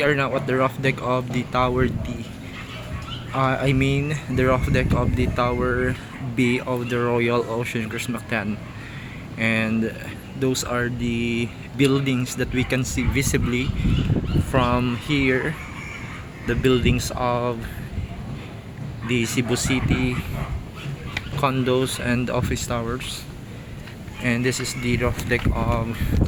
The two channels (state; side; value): identical; both; correlation 1.00